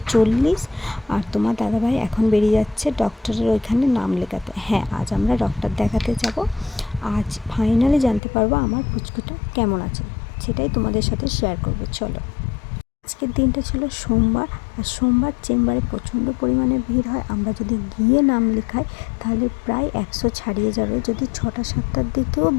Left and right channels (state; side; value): drops out; right; at 8.2 s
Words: আর তোমার দাদাভাই এখন বেরিয়ে যাচ্ছে ডক্টরের ওইখানে নাম লেখাতে। হ্যাঁ, আজ আমরা ডক্টর দেখাতে যাব। আজ ফাইনালি জানতে পারবো আমার পুচকুটা কেমন আছে, সেটাই তোমাদের সাথে শেয়ার করবো। চলো। আজকের দিনটা ছিল সোমবার, আর সোমবার চেম্বারে প্রচণ্ড পরিমাণে ভিড় হয়। আমরা যদি গিয়ে নাম লেখাই তাহলে প্রায় 100 ছাড়িয়ে যাবে। যদি 6টা-7টার দিকেও